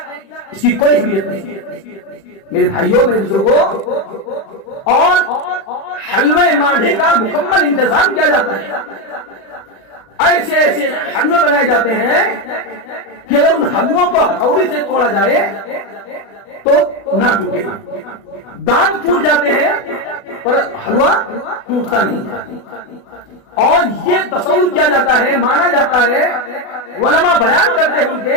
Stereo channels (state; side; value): late; right; 36 ms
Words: اس کی کوئی اہمیت نہیں میرے بھائیوں، میرے بزرگوں۔ اور حلوے ماڈھے کا مکمل انتظام کیا جاتا ہے، ایسے ایسے حلوے بنائے جاتے ہیں کہ اگر ان حلووں کو ہتھوڑی سے توڑا جائے تو نہ ٹوٹے گا، دانت ٹوٹ جاتے ہیں پر حلوہ ٹوٹتا نہیں۔ اور یہ تصور کیا جاتا ہے، مانا جاتا ہے، علماء بیان کرتے